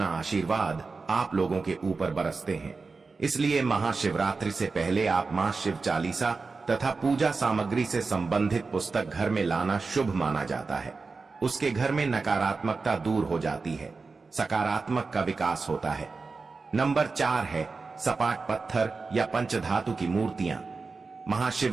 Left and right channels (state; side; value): quieter; left; 4.2 dB